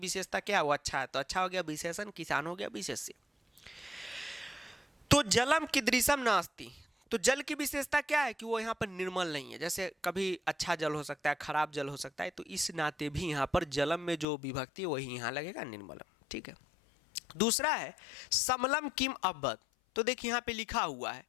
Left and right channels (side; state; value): right; drops out; at 14.2 s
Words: क्या है, वो अच्छा है, तो अच्छा हो गया विशेषण, किसान हो गया विशेष्य। तो जलम कीदृशम नास्ति, तो जल की विशेषता क्या है कि वो यहाँ पर निर्मल नहीं है, जैसे कभी अच्छा जल हो सकता है, खराब जल हो सकता है, तो इस नाते भी यहाँ पर जलम में जो विभक्ति है वही यहाँ लगेगा निर्मलम। ठीक है। दूसरा है समलम किम अब्बत, तो देखिए यहाँ पे लिखा हुआ है